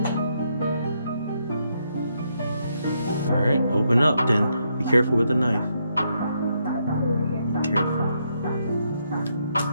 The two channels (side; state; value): both; inverted; correlation -0.78